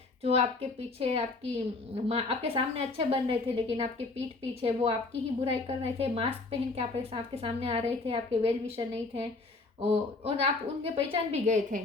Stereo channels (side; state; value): right; quieter; 3.5 dB